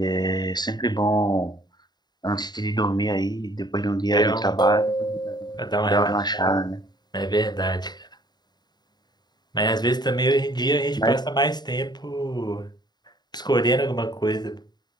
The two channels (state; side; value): late; right; 0.20 ms